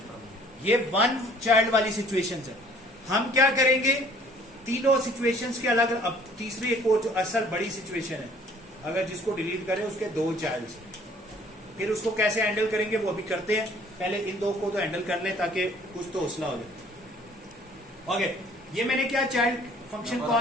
ये 1 चाइल्ड वाली सिचुएशन है। हम क्या करेंगे, तीनों सिचुएशंस के अलग, अब तीसरी एक और जो असल बड़ी सिचुएशन है, अगर जिसको डिलीट करें उसके 2 चाइल्ड, फिर उसको कैसे हैंडल करेंगे वो अभी करते हैं, पहले इन 2 को तो हैंडल कर ले ताकि कुछ तो हौसला हो जाए। ओके, ये मैंने क्या चाइल्ड फंक्शन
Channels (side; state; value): both; normal; correlation 0.55